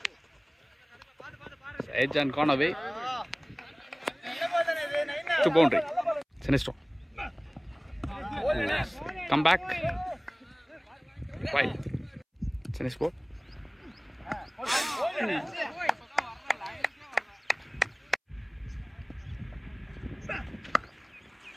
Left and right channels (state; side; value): identical; both; correlation 1.00